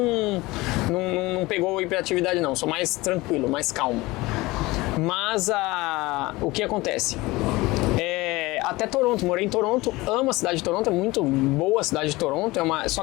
pegou hiperatividade não. Sou mais tranquilo, mais calmo. Mas o que acontece? até Toronto, morei em Toronto, amo a cidade de Toronto, é muito boa a cidade de Toronto, só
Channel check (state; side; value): quieter; right; 20.9 dB